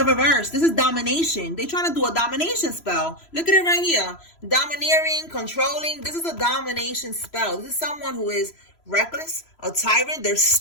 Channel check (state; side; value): late; right; 3.0 ms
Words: reverse. This is domination. They trying to do a domination spell. Look at it right here. Domineering, controlling. This is a domination spell. This is someone who is reckless, a tyrant. They're